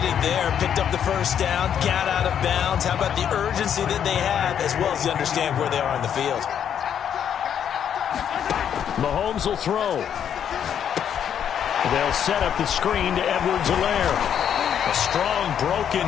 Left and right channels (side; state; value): right; quieter; 8.9 dB